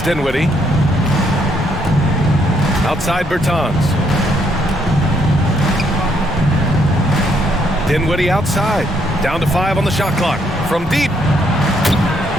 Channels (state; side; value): normal; both; correlation 0.72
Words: Dinwiddie. Outside Bertans. Dinwiddie outside. Down to 5 on the shot clock. From deep.